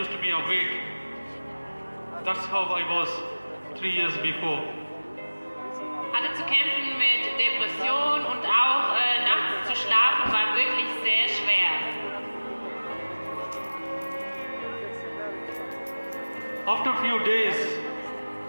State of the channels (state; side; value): inverted; both; correlation -1.00